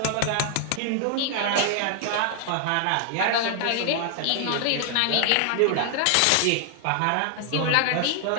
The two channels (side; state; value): both; different; correlation 0.00